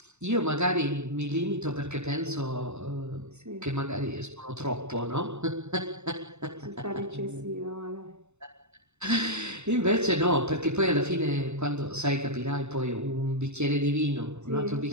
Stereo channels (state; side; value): late; left; 0.82 ms